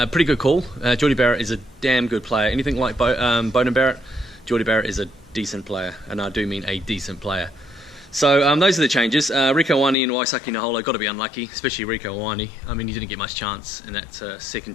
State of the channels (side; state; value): right; drops out; at 10.0 s